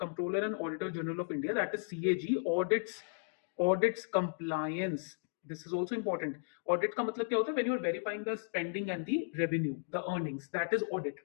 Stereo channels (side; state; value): right; silent; digital silence